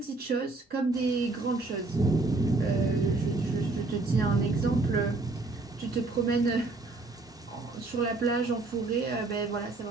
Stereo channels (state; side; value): quieter; left; 3.4 dB